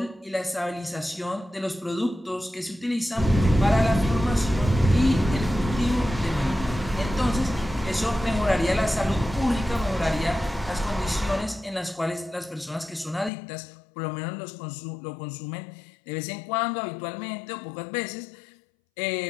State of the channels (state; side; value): drops out; right; at 13.3 s